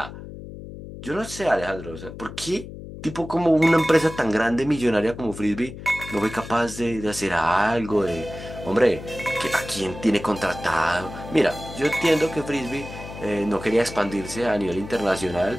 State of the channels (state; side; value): noise; left; hum, 12 dB below the sound